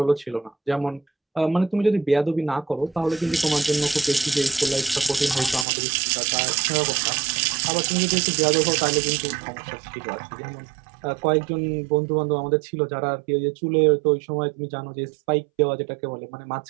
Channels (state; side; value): drops out; left; at 5.7 s